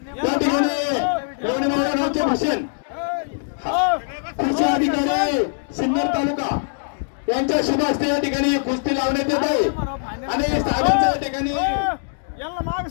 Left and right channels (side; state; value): right; silent; digital silence